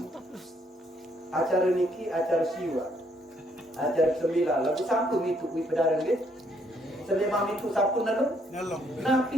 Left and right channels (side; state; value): both; normal; correlation 0.70